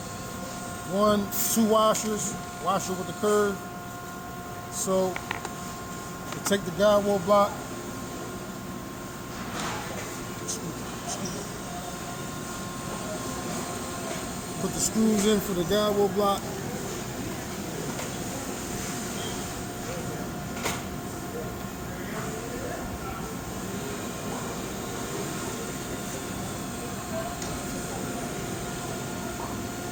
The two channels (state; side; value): identical; both; correlation 1.00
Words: 1, 2 washers, washer with the curve. So you take the guide wheel block, put the screws in for the guide wheel block.